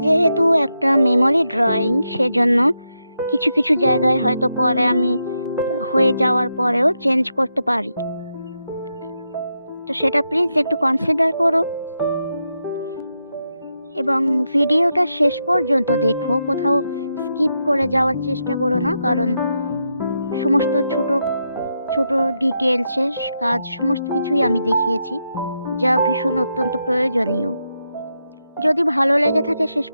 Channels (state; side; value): inverted; both; correlation -0.84